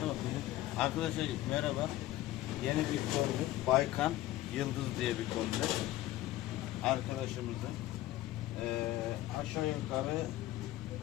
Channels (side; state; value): right; quieter; 15.4 dB